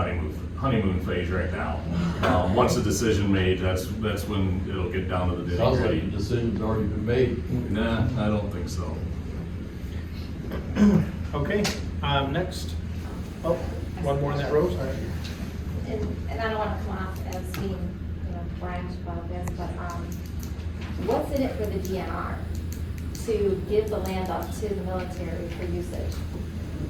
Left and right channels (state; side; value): identical; both; correlation 1.00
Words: honeymoon phase right now. Once a decision made, that's when it'll get down to the Sounds like nitty-gritty. the decision's already been made. Nah, I don't think so. Okay, next, oh, one more in that row, sorry. And I don't wanna come off as being, brash about this, but, what's in it for the DNR to give the land up to the military for usage?